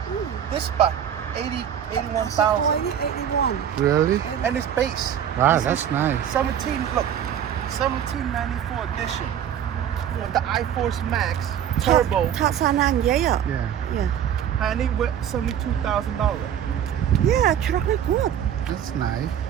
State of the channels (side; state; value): left; quieter; 9.5 dB